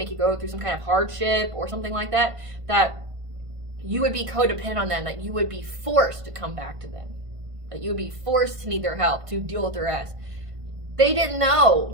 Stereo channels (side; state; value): left; late; 1.5 ms